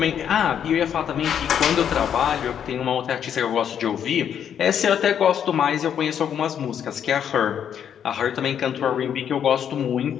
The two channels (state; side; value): quieter; right; 8.8 dB